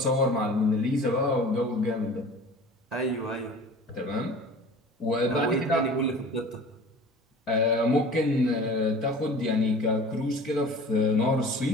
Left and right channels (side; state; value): both; normal; correlation 0.42